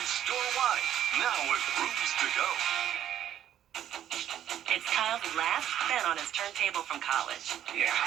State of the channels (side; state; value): left; quieter; 10.9 dB